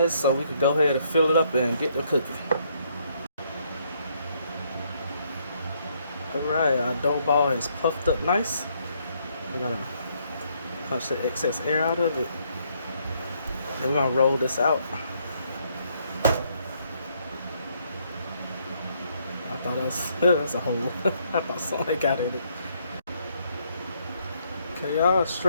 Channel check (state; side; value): inverted; both; correlation -0.71